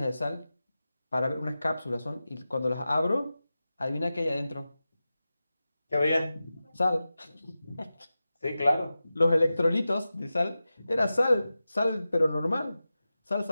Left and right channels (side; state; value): both; inverted; correlation -0.94